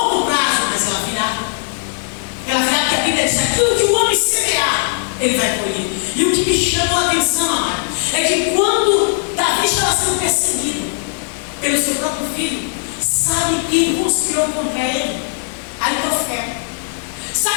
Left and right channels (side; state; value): right; silent; 63 dB below the other